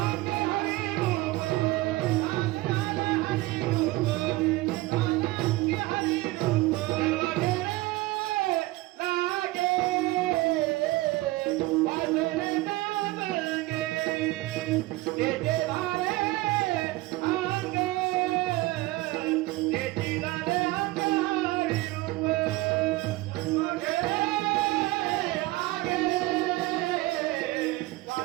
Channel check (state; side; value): quieter; left; 19.7 dB